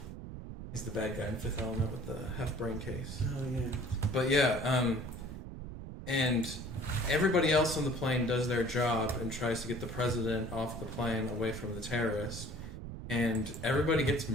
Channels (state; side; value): noise; right; rumble, 10 dB below the sound